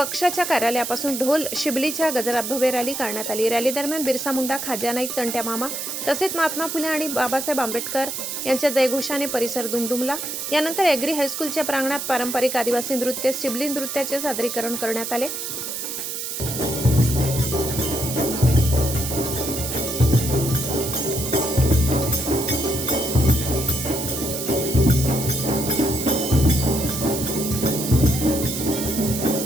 कार्यालयापासून ढोल शिबलीच्या गजरात भव्य रॅली काढण्यात आली. रॅली दरम्यान बिरसा मुंडा, खाज्या नाईक, तंट्या मामा तसेच महात्मा फुले आणि बाबासाहेब आंबेडकर यांच्या जयघोषाने परिसर दुमदुमला. यानंतर एग्री हायस्कूलच्या प्रांगणात पारंपरिक आदिवासी नृत्य शिबली नृत्याचे सादरीकरण करण्यात आले.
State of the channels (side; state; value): right; noise; hiss, 5 dB below the sound